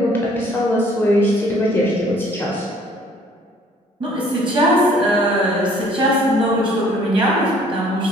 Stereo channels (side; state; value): both; normal; correlation 0.58